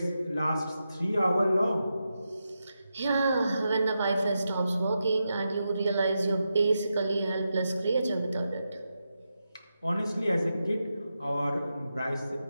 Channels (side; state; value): both; inverted; correlation -0.88